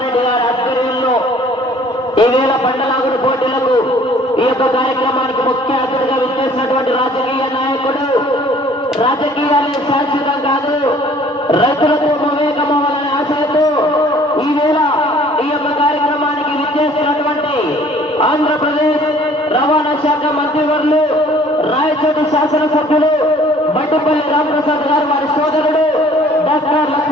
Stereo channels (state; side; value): normal; both; correlation 0.54